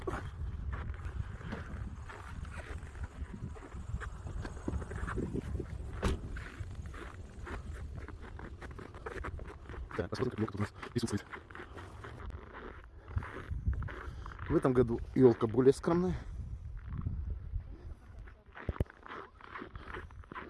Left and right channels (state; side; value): identical; both; correlation 1.00